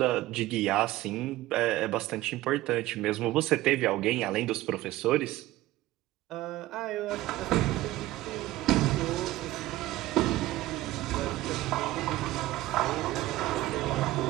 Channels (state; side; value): quieter; left; 16.5 dB